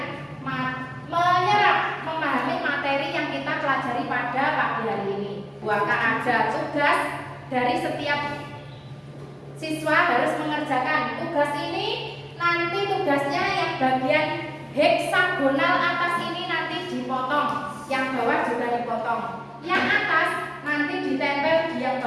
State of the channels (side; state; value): both; identical; correlation 1.00